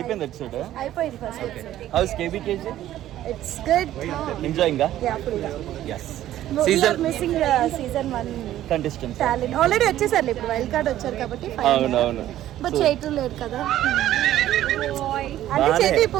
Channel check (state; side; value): quieter; left; 13.0 dB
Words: ఎపిసోడ్? అయిపోయింది first episode. How's KBKG? It's good. Enjoying గా? యా ఫుల్ గా. yes. Season missing season 1 contestants talent already వచ్చేసారు, ఇప్పుడు వైల్డ్ కార్డ్ వచ్చారు కాబట్టి అవును. బట్ చేయటం లేదు కదా. అంటే చేతి